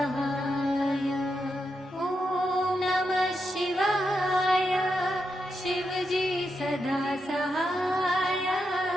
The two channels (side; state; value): both; normal; correlation 0.85